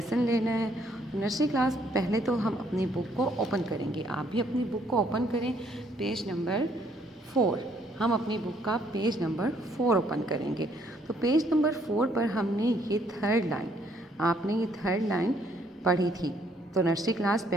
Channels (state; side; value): normal; both; correlation 0.67